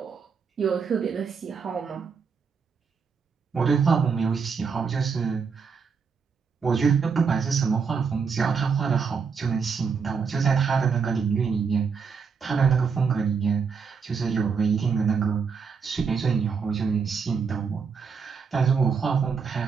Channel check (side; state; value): left; quieter; 5.8 dB